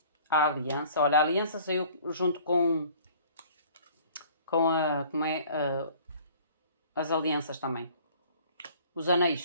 A aliança, olha, a aliança saiu junto com as alianças também. Os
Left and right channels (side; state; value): both; inverted; correlation -0.51